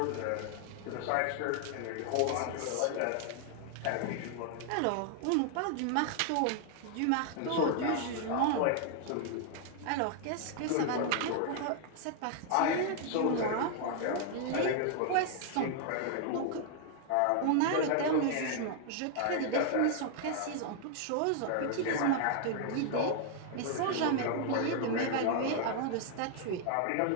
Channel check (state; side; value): different; both; correlation 0.00